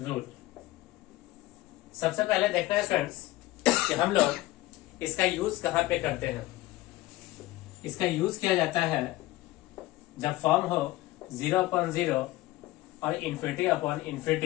सबसे पहले देखना है स्टूडेंट्स कि हम लोग इसका यूज कहां पे करते हैं। इसका यूज किया जाता है जब फॉर्म हो 0/0 और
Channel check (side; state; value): right; quieter; 17.7 dB